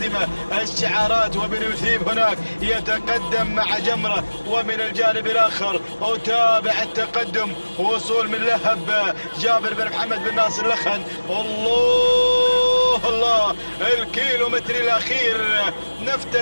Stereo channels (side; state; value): both; inverted; correlation -1.00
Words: الشعارات، وبن مثيب هناك يتقدم مع جمرة، ومن الجانب الآخر أتابع التقدم، وصول من لهب جابر بن محمد بن ناصر لخن. الله، الكيلومتر الأخير